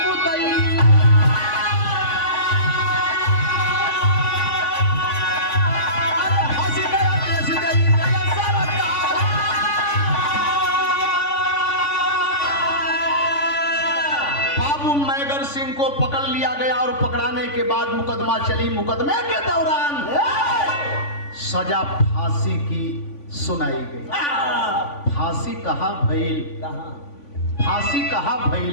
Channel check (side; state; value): right; late; 3.5 ms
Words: मेघर सिंह को पकड़ लिया गया और पकड़ाने के बाद मुकदमा चली। मुकदमे के दौरान सजा फांसी की सुनाई गई। फांसी कहाँ भइल? फांसी कहाँ भइल?